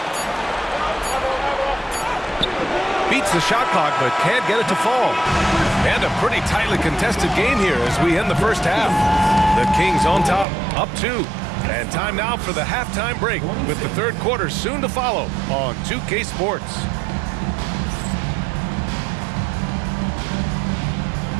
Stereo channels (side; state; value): left; drops out; at 10.5 s